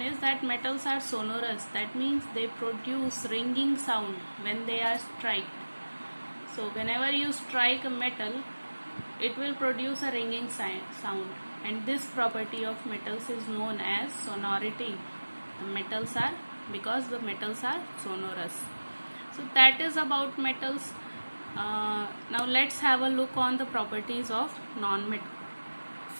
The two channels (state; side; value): inverted; both; correlation -1.00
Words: is that metals are sonorous. That means they produce ringing sound when they are struck. So whenever you strike a metal, it will produce a ringing sound, and this property of metals is known as sonority. Because the metals are sonorous. So that is about metals. Now let's have a look on the properties of non-metals.